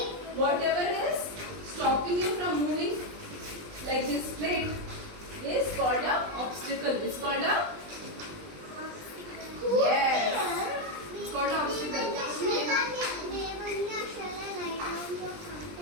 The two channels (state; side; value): late; left; 20 ms